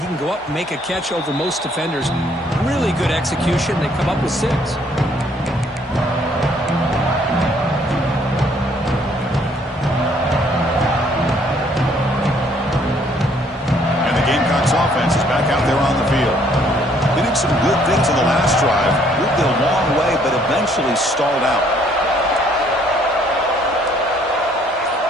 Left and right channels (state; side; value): normal; both; correlation 0.64